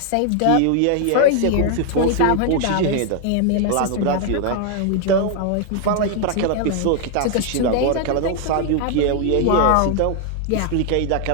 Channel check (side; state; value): both; different; correlation 0.00